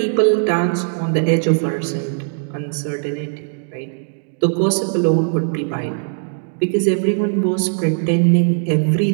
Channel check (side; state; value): left; silent; digital silence